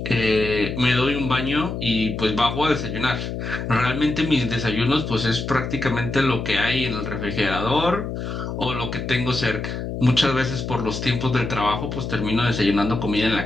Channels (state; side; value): noise; left; hum, 5 dB below the sound